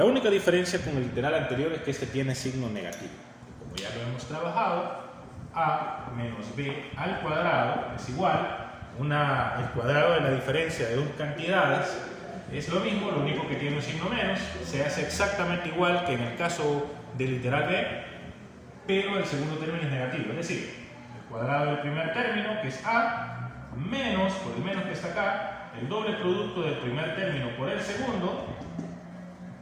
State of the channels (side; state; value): both; identical; correlation 1.00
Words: única diferencia con el literal anterior es que este tiene signo negativo. Como ya lo hemos trabajado, a menos b al cuadrado es igual, el cuadrado de la diferencia de dos cantidades es lo mismo, lo único que tiene un signo menos, se hace exactamente igual que en el caso del literal b, pero el segundo término es negativo, es decir, el cuadrado del primer término, que es a, menos, por el menos que está acá, el doble producto del primer término por el segundo,